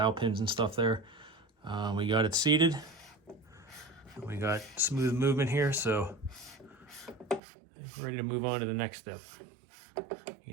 pins and stuff there, we got it seated. We got smooth movement here, so ready to move on to the next step. You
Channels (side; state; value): left; drops out; at 7.4 s